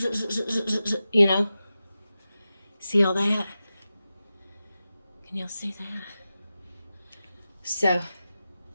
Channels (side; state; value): both; inverted; correlation -0.93